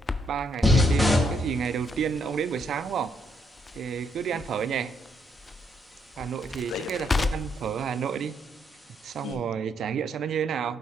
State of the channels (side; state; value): both; normal; correlation 0.75